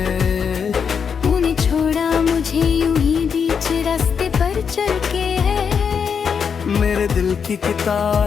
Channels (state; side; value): quieter; right; 6.6 dB